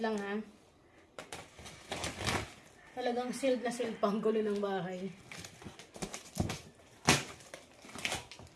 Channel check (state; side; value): identical; both; correlation 1.00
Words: ha. Talagang sealed na sealed pang gulo ng bahay.